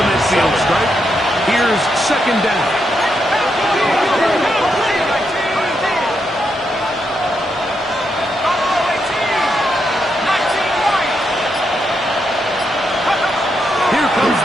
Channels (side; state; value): both; normal; correlation 0.82